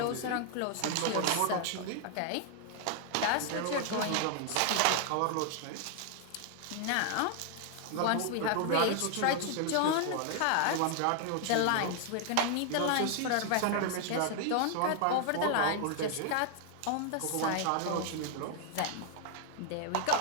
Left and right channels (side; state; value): both; different; correlation 0.00